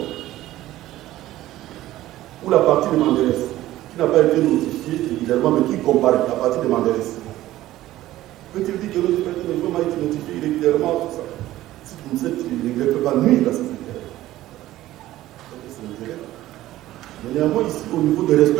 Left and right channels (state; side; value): quieter; left; 15.1 dB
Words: Ou la partie de Manderès, qui n'a pas été notifiée régulièrement, mais qui compare la partie de Manderès. Peut-il dire que l'autre personne a été notifiée régulièrement, tout ça? Si vous ne savez, il ne peut pas nuire à ses intérêts. Mais néanmoins, ici, au niveau du